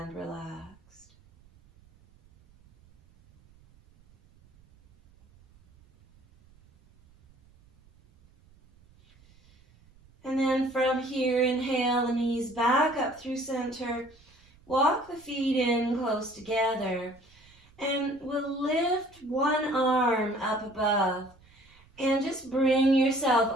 relaxed. And then from here, inhale the knees back up through center. Walk the feet in close together. And we'll lift one arm up above. And just bring yourself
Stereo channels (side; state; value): right; noise; rumble, 29 dB below the sound